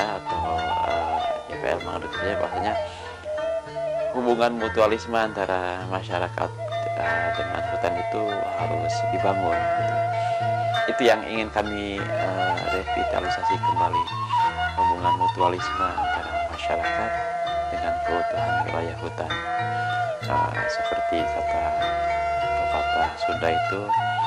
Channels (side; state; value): both; identical; correlation 1.00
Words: atau YPL menganut percaya bahwasanya hubungan mutualisme antara masyarakat dengan hutan itu harus dibangun gitu. Itu yang ingin kami revitalisasi kembali, hubungan mutualisme antara masyarakat dengan keutuhan wilayah hutan. Seperti kata pepatah Sunda itu